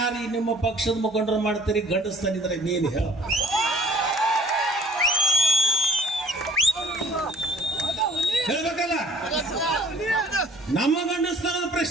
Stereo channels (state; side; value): normal; both; correlation 0.55